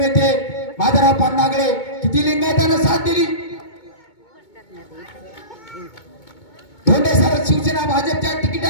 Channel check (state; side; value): late; right; 2.2 ms